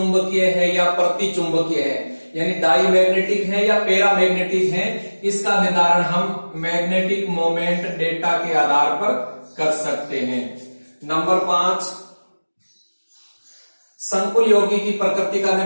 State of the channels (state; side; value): inverted; both; correlation -1.00